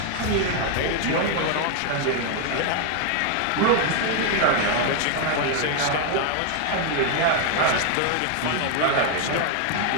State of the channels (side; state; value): both; different; correlation 0.00